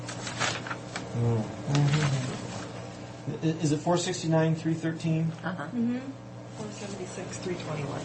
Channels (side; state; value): both; identical; correlation 1.00